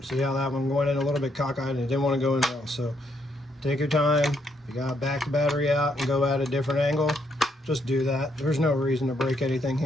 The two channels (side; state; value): both; normal; correlation 0.74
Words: see how that one went in a little bit cockeyed and it didn't want to go in well. So take your time. You gotta back the battery out and go at a different angle. Just do that. There's no reason to break anything